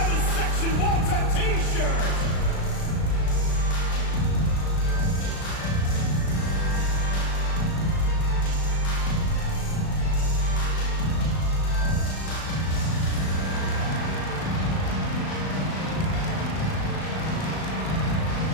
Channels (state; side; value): late; right; 36 ms